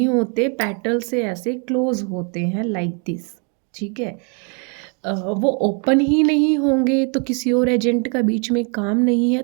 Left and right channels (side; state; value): left; quieter; 37.9 dB